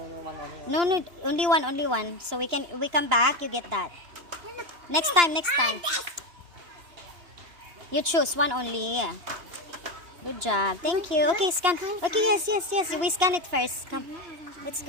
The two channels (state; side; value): late; left; 2.9 ms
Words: one only. No, only one. So we come back, you get that. Next time. You choose one only, yeah. Good job. Thank you. Okay, scan. Okay, yes. We scan it first. Come. Let's